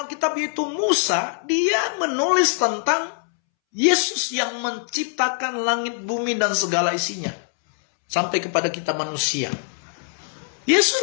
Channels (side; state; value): right; silent; 64 dB below the other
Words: Alkitab yaitu Musa, dia menulis tentang Yesus yang menciptakan langit, bumi, dan segala isinya. Sampai kepada kita manusia.